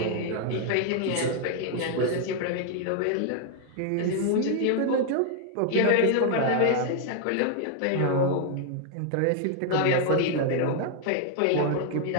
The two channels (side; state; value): both; different; correlation 0.00